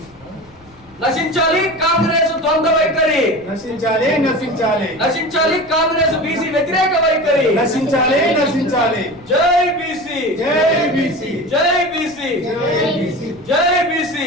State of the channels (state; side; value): noise; left; rumble, 27 dB below the sound